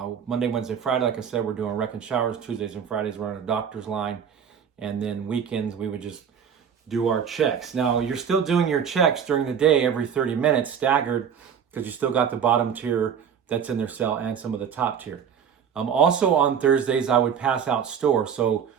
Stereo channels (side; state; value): left; quieter; 7.7 dB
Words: Friday, like I said, we're doing rec and showers. Tuesdays and Fridays, we're on a doctor's line. And then weekends, we would just do our checks. Now, you're still doing your checks during the day every 30 minutes, staggered, because you still got the bottom tier that's in their cell and some of the top tier. Also on Thursdays, I would pass out store. So